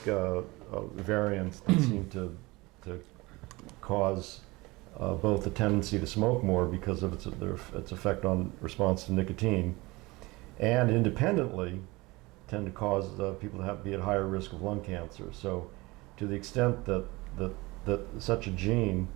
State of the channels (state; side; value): quieter; left; 22.5 dB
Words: variants that seem to cause both a tendency to smoke more because of its effect on response to nicotine, and independently tend to cause people to be at higher risk of lung cancer. So to the extent that such a gene